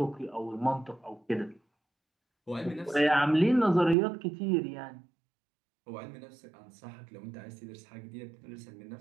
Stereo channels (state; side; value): drops out; left; at 4.0 s